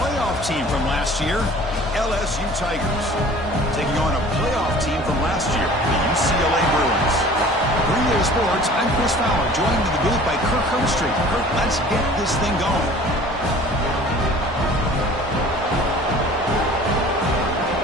team from last year, LSU Tigers, taking on a playoff team from last year, the UCLA Bruins. Green Day Sports, I'm Chris Fowler, joined in the booth by Kirk Herbstreit. Kirk, let's get this thing going.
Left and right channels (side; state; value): both; normal; correlation 0.46